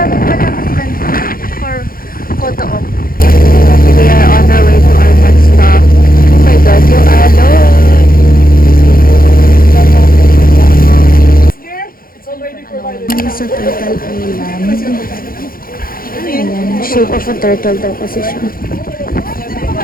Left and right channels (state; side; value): late; right; 0.42 ms